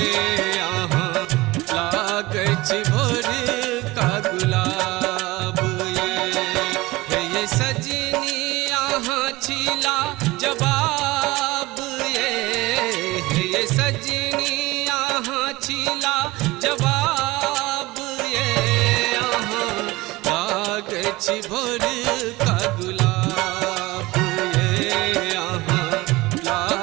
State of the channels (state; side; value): quieter; left; 20.7 dB